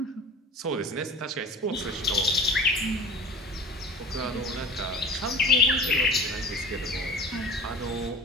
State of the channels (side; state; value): both; normal; correlation 0.37